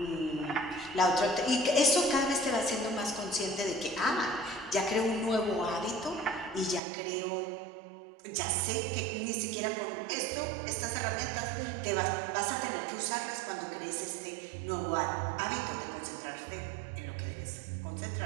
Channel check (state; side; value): drops out; left; at 6.8 s